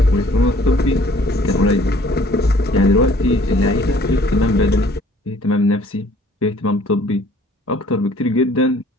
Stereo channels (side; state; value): both; normal; correlation 0.56